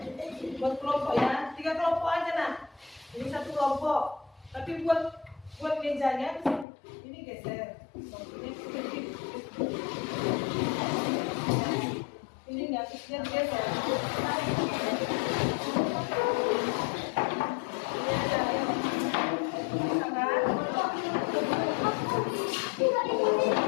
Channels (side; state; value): right; drops out; at 6.7 s